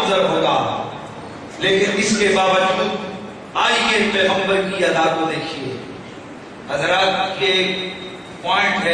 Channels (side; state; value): both; identical; correlation 1.00